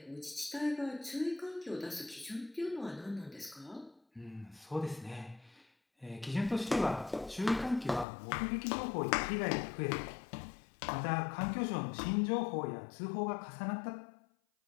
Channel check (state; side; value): drops out; right; at 8.1 s